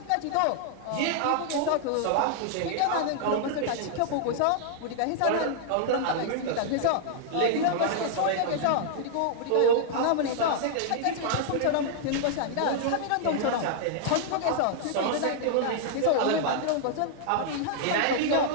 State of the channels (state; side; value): different; both; correlation -0.01